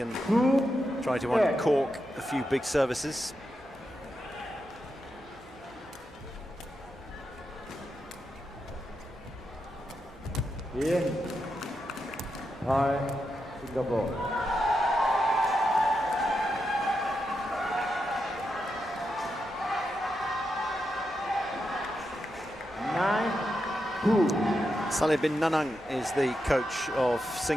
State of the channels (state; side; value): normal; both; correlation 0.86